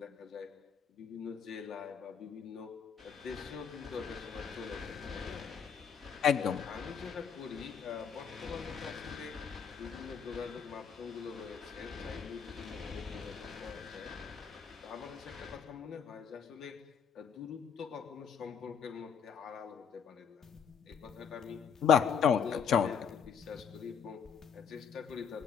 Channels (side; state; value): right; quieter; 7.0 dB